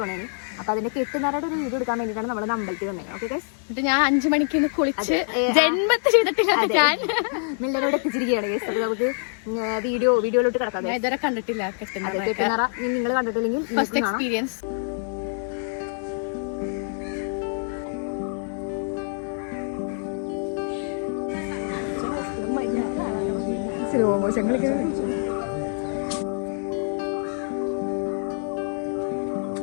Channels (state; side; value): silent; right; 61 dB below the other